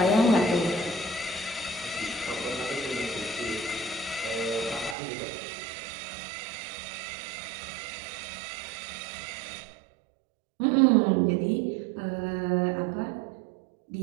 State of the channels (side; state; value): left; drops out; at 5.0 s